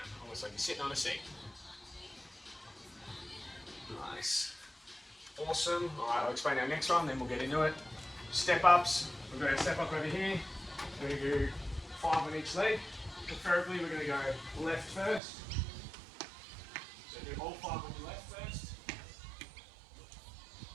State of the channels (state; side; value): drops out; left; at 15.2 s